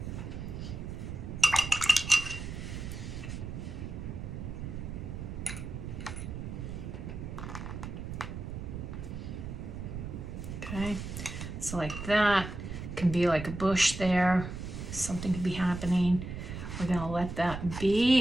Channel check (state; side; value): noise; right; rumble, 7 dB below the sound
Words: Okay, so like that can be like a bush there. Something could be happening. We're gonna let that